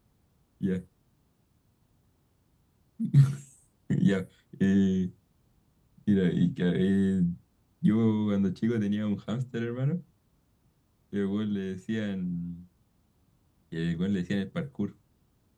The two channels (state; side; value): identical; both; correlation 1.00